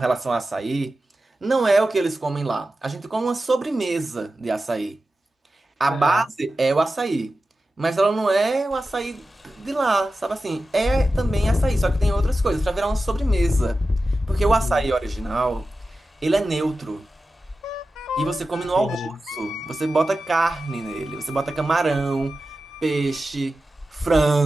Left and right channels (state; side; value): normal; both; correlation 0.93